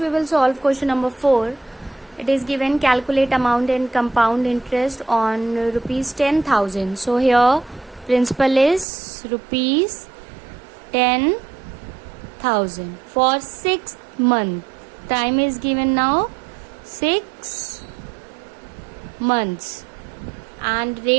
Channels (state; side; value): drops out; left; at 8.8 s